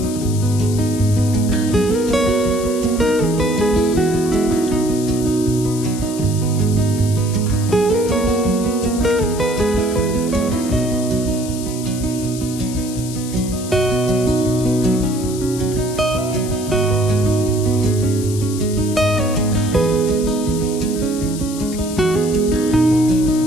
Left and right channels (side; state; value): left; noise; hiss, 12 dB below the sound